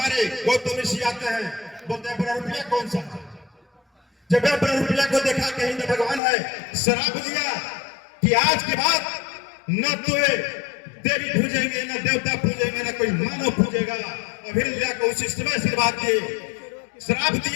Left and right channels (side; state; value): right; drops out; at 6.2 s